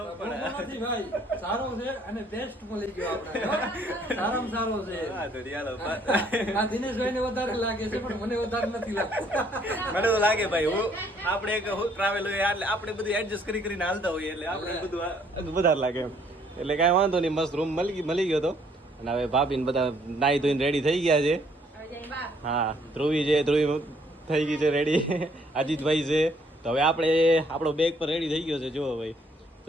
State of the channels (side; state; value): both; normal; correlation 0.65